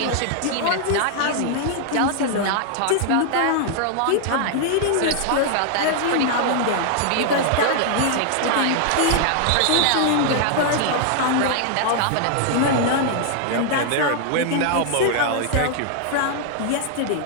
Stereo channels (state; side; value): different; both; correlation -0.01